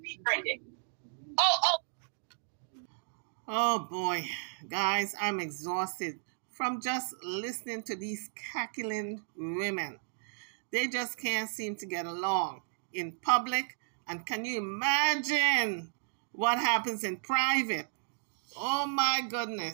befriended? Oh boy, guys, I'm exhausted from just listening to these cackling women. They just can't seem to get along in public. And can you imagine what happens in private? Oh my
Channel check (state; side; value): silent; left; digital silence